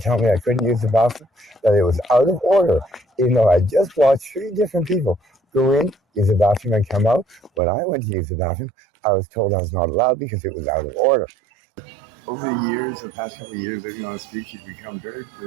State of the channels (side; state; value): left; drops out; at 7.6 s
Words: me I couldn't use the bathroom, that it was out of order, even though I just watched 3 different people go in, use the bathroom, and come out. When I went to use the bathroom, I was told I was not allowed because it was out of order. Over the years, the past couple of years, living on the streets, you become very,